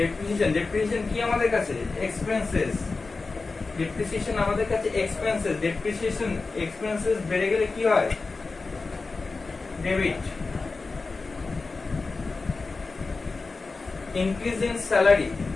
depreciation কি আমাদের কাছে? এক্সপেন্সেস। ডেপ্রিসিয়েশন আমাদের কাছে এক্সপেন্সেস, ডেপ্রিসিয়েশন এক্সপেন্সেস বেড়ে গেলে কি হয়? Debit. Increase in salary,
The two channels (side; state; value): right; quieter; 4.0 dB